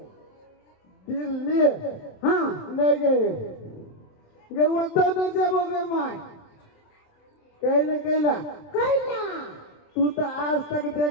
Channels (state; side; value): late; right; 27 ms